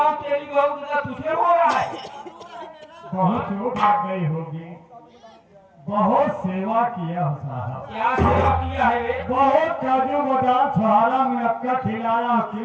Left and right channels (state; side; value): identical; both; correlation 1.00